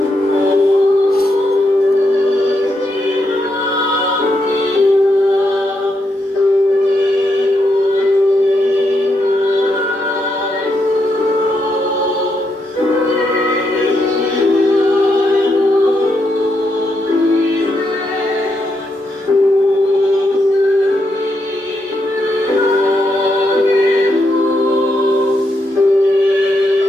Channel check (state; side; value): normal; both; correlation 0.81